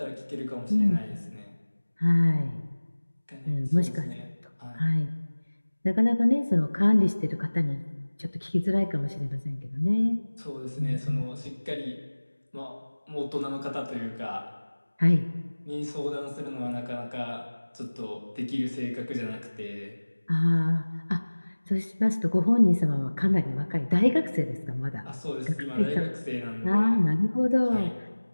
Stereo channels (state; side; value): inverted; both; correlation -1.00